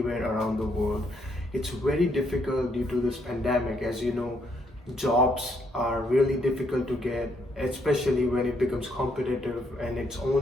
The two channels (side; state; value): both; normal; correlation 0.73